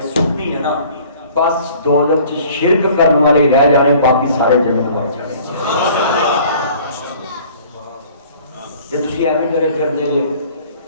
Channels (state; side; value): inverted; both; correlation -0.51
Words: سٹنی ہے نا بس دوزخ چ شرک کرنے والے رہ جانے باقی سارے جنت وڑ جانے تے تسی ایویں ڈرے پھردے